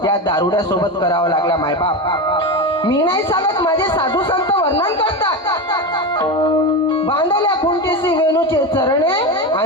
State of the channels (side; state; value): both; normal; correlation 0.19